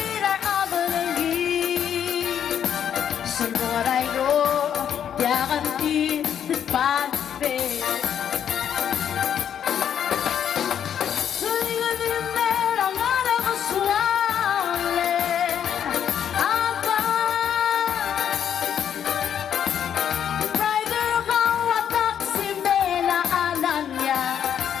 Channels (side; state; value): right; quieter; 9.0 dB